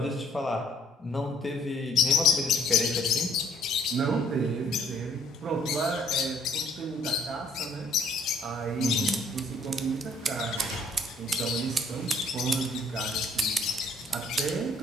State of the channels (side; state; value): both; normal; correlation 0.60